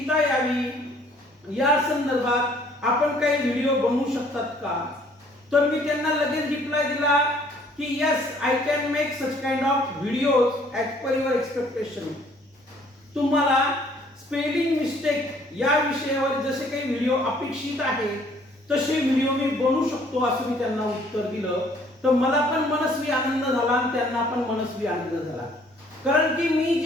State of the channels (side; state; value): both; normal; correlation 0.60